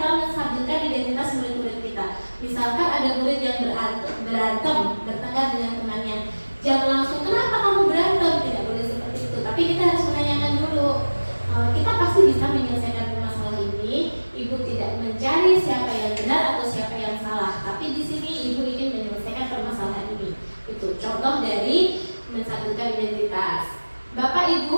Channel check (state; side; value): inverted; both; correlation -1.00